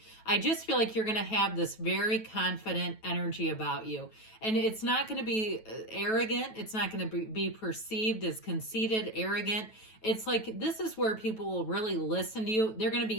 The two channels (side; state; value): right; late; 9.2 ms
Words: I just feel like you're going to have this very confident energy about you. And it's not going to be arrogant. It's not going to be perceived as conceited, arrogant. It's like this is where people will really listen to you. They're going to